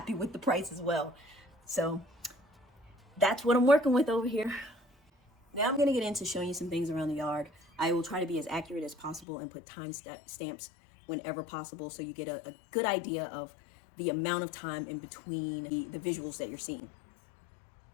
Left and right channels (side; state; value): right; drops out; at 9.2 s